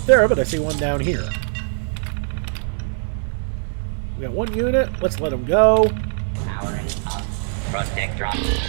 there, but I see one down here. We got one unit. Let's let him go. Powering up. Protector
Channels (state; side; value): silent; left; digital silence